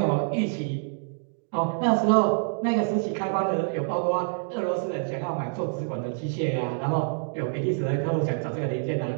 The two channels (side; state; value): left; silent; digital silence